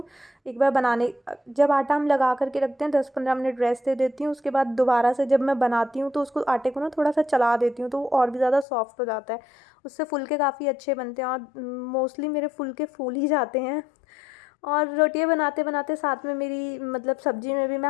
एक बार बनाने, जब आटा हम लगा करके रखते हैं 10-15 मिनट रेस्ट दे देती हूँ। उसके बाद दोबारा से जब मैं बनाती हूँ तो उसको आटे को ना थोड़ा सा चला देती हूँ तो वो और भी ज़्यादा सॉफ्ट हो जाता है। उससे फुलके काफ़ी अच्छे बनते हैं और मोस्टली मेरे फुलके फूल ही जाते हैं। और रोटियां बनाते बनाते साथ में मेरी मतलब सब्जी में भी मैं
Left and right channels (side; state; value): right; drops out; at 8.7 s